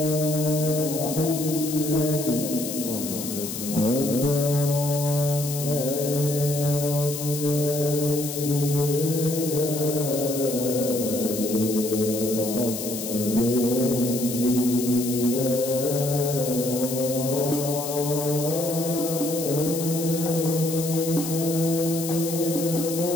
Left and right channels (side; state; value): left; noise; hiss, 7 dB below the sound